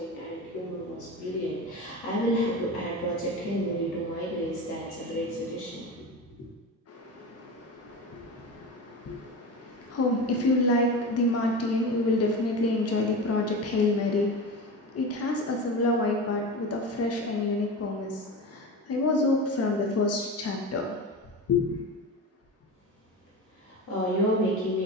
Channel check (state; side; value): normal; both; correlation 0.27